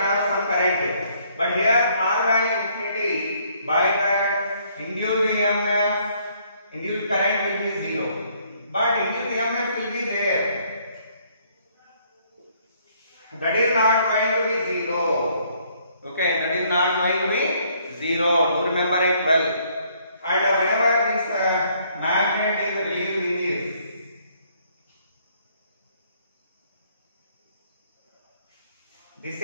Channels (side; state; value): both; inverted; correlation -0.66